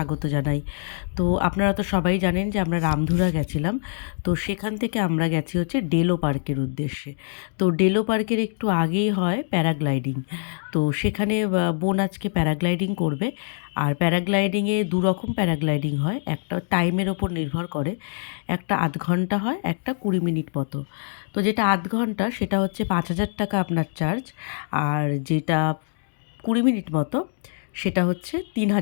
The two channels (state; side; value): silent; right; digital silence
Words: জানাই। তো আপনারা তো সবাই জানেন যে আমরা রামধুরা গেছিলাম। তো সেখান থেকে আমরা গেছি হচ্ছে ডেলো পার্কের উদ্দেশ্যে। তো ডেলো পার্কের একটু আগেই হয় প্যারাগ্লাইডিং। তো সেখানে বোন আজকে প্যারাগ্লাইডিং করবে। আর প্যারাগ্লাইডিংয়ে দুরকম প্যারাগ্লাইডিং হয়, একটা টাইমের ওপর নির্ভর করে, একটা আধ ঘন্টা হয়, একটা 20 মিনিট মতো। তো যেটা আধ ঘন্টা সেটা হচ্ছে 5,000 টাকা আপনার চার্জ, আর যেটা 20 মিনিট মতো সেটা হচ্ছে